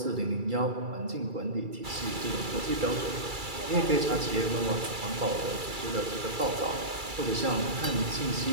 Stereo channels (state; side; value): late; left; 2.3 ms